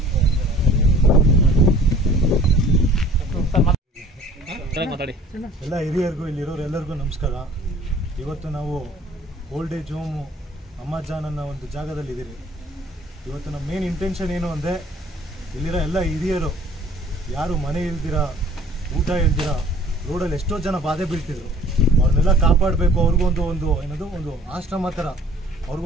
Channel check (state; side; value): normal; both; correlation 0.51